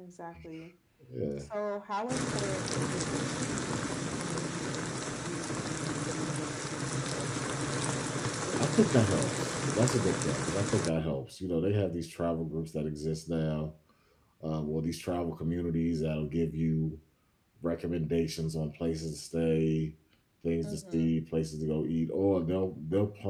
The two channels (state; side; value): identical; both; correlation 1.00